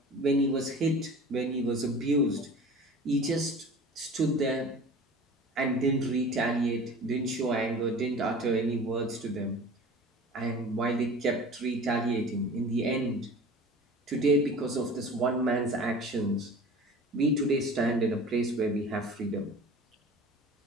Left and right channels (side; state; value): both; normal; correlation 0.40